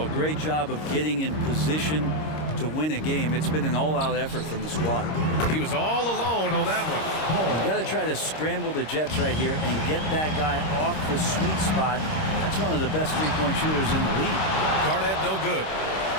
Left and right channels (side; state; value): right; late; 26 ms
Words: great job of getting in position to win a game. It's been an all-out effort from the squad. He was all alone on that one. You got to try to scramble the Jets right here and get that guy off the sweet spot. That's one of the best three-point shooters in the league. Garnett no good.